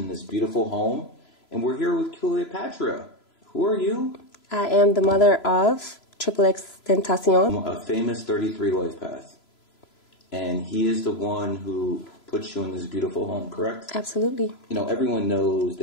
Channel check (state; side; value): late; right; 3.0 ms